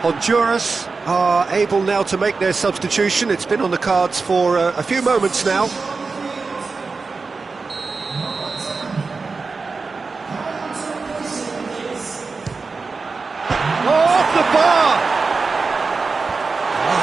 Honduras are able now to make their substitution. It's been on the cards for a few moments now. Off the bar!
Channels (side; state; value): left; quieter; 4.3 dB